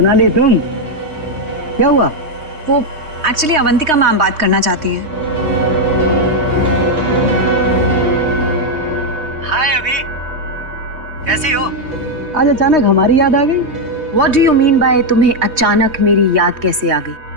तुम? क्या हुआ? वो एक्चुअली अवंतिका मैम बात करना चाहती हैं। हाय अभी, कैसी हो? आज अचानक हमारी याद आ गई। What do you mean by तुम्हें अचानक मेरी याद कैसे आ गई?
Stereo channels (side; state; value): left; late; 3.2 ms